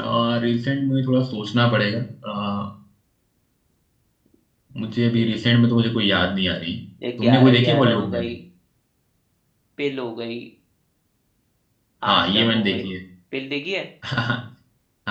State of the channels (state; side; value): identical; both; correlation 1.00